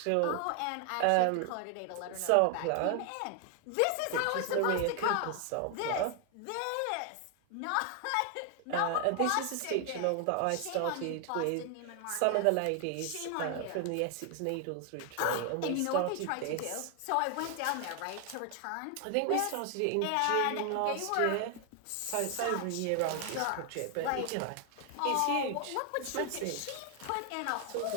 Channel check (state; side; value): different; both; correlation 0.00